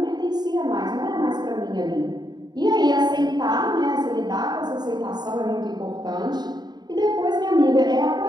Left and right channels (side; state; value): left; late; 0.20 ms